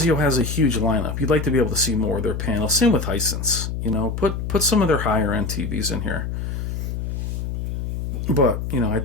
has a huge lineup. You'd like to be able to see more of their panels. Same with Hisense. You know, put some of their higher end TVs in here. But, you know, I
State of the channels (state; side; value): noise; left; hum, 4 dB below the sound